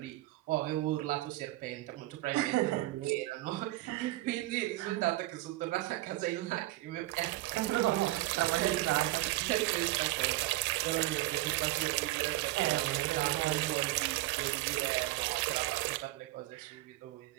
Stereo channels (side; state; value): left; quieter; 17.9 dB